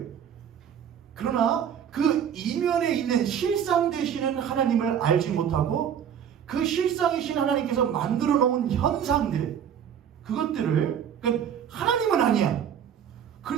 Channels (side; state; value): left; quieter; 8.7 dB